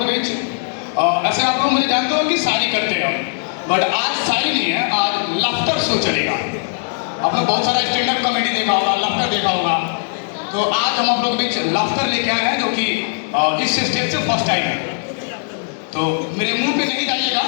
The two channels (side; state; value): right; silent; digital silence